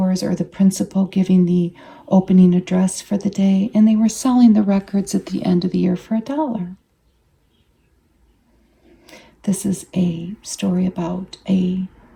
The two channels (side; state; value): both; identical; correlation 1.00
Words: or the principal giving the opening address for the day, and they were selling the records at the end of the year for $1. This is a story about a